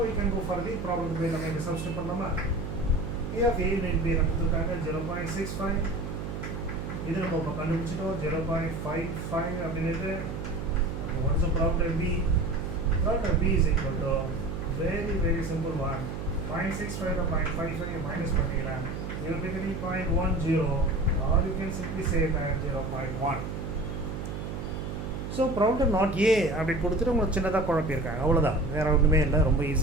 we can go for the probability நம்ம இங்கே சப்ஸ்டிட் பண்ணலாமா? P of A and B கொடுத்துருக்காங்க 0.65, இது நம்ம இப்போ கண்டுபிடிச்சிட்டோம் 0.55 அப்படின்ட்டு. அப்போ what is the probability of B? Probability of B is equal to very simple one, 0.65 or 0.55 minus பண்ணிங்கன்னா you will be getting 0.10, or you can simply say that 0.1. So problem not A அப்படி கொடுத்துட்டு உங்களுக்கு சின்னதாக குழப்பியிருக்காங்க, அவ்வளோதான், வேறு ஒன்றுமே இல்லை, ரொம்ப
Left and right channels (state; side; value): noise; right; hum, 6 dB below the sound